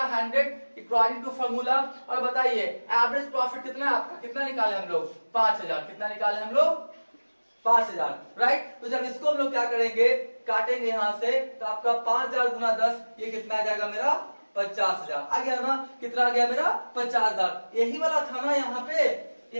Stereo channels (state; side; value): inverted; both; correlation -1.00